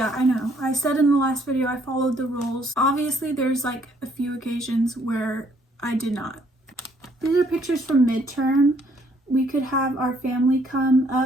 I know. I said in the last video I followed the rules. Obviously, there's like a few occasions where I did not. These are pictures from midterm. We could have our family come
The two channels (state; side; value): normal; both; correlation 0.66